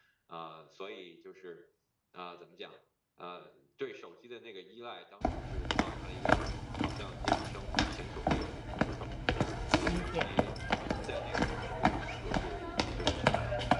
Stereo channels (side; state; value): both; identical; correlation 1.00